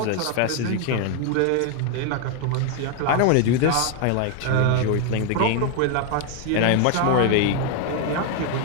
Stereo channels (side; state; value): both; different; correlation 0.01